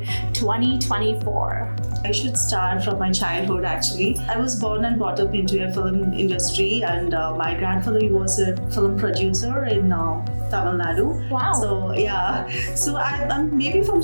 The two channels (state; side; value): inverted; both; correlation -1.00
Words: 2024. I should start from my childhood actually. I was born and brought up into a film industry, and my grandfather was a film producer in Tamil Nadu. Wow. So I'm maybe from